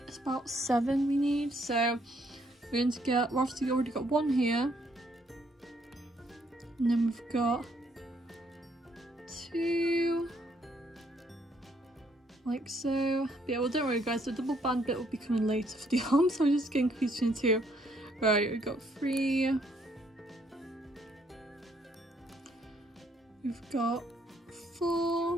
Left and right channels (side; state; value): both; normal; correlation 0.69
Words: it's about 7 we need. So we're going to get, we've obviously already got one here, and then we've got 2, like so. But yeah, well, don't worry guys, the double band bit will be coming later for the arms, so I'm just getting confused between 2. Right, we've got 3. We've got